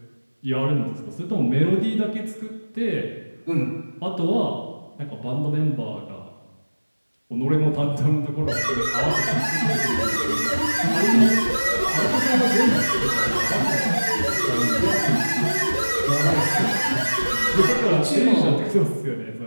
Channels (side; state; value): both; inverted; correlation -1.00